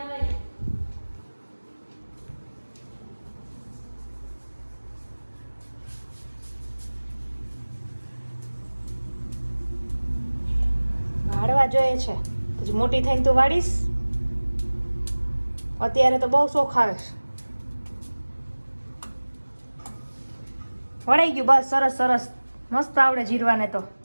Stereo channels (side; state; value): both; inverted; correlation -1.00